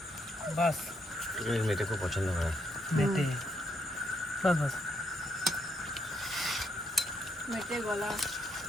বাস মেয়েটা খুব পছন্দ করে। বেটে বাস বাস। মেটে গলা।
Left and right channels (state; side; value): normal; both; correlation 0.75